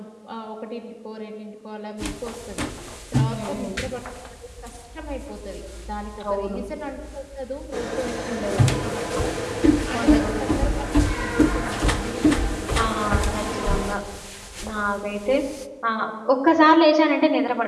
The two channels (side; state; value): both; identical; correlation 1.00